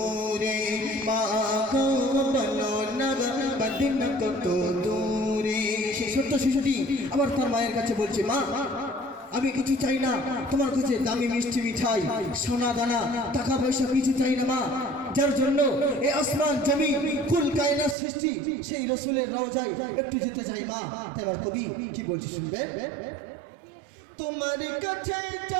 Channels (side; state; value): left; drops out; at 17.9 s